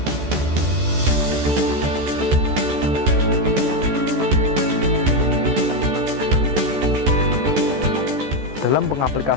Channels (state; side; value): late; left; 14 ms